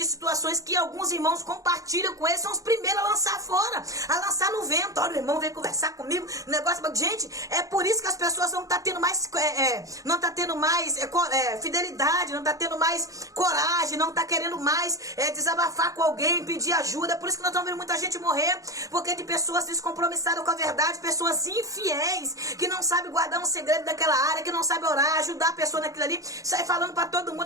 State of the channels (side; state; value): left; late; 0.16 ms